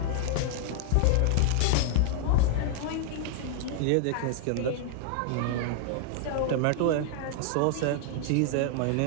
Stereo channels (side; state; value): both; different; correlation -0.01